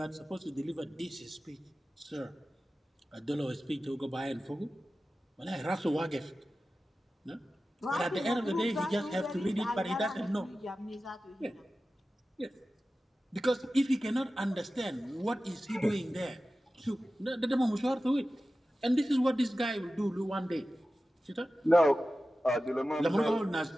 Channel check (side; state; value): both; normal; correlation 0.95